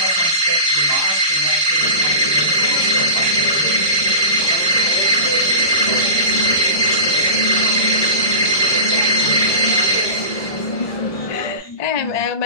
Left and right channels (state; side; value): late; right; 1.1 ms